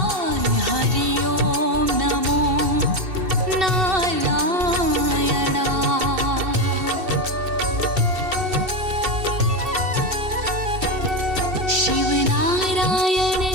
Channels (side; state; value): left; late; 2.7 ms